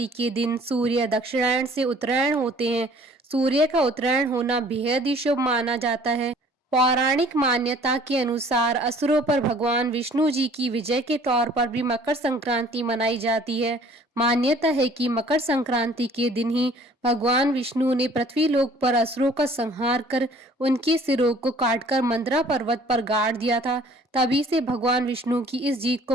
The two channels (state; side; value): normal; both; correlation 0.54